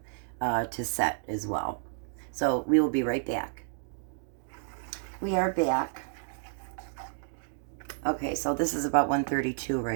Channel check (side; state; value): left; silent; digital silence